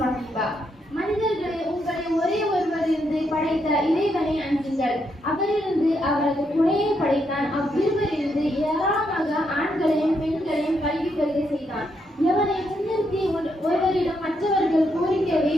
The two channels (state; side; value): normal; both; correlation 0.79